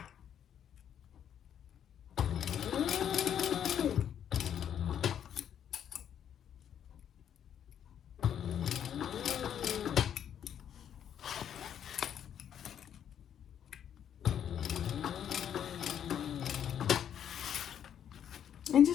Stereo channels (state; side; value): quieter; right; 9.3 dB